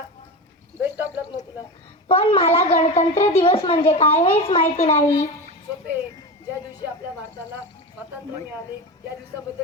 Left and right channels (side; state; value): both; normal; correlation 0.24